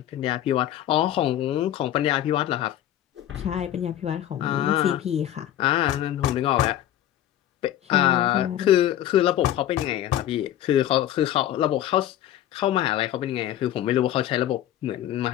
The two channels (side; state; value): right; quieter; 12.3 dB